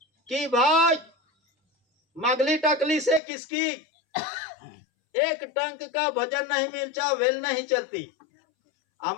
कि भाई मगली टकली से किसकी एक टंक का भजन नहीं मिलता, वेल नहीं चलती।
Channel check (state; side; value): drops out; right; at 3.2 s